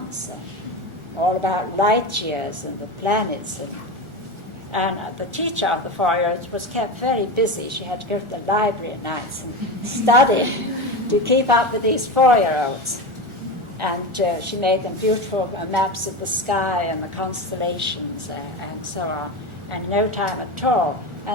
all about light years and the planets. And the teacher of the 4-year-olds was kept very busy. She had to go to the library at nights and study to keep up with these 4-year-olds. And she made them beautiful maps of the sky and the constellations and so on, and no time at all.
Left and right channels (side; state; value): left; late; 1.4 ms